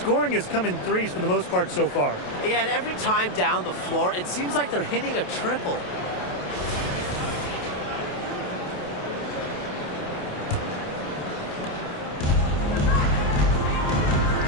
has come in threes for the most part so far. Yeah, and every time down the floor, it seems like they're hitting a triple.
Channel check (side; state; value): right; late; 28 ms